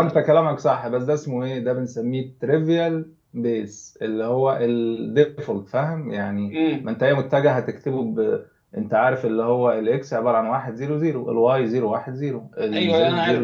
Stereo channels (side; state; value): both; identical; correlation 1.00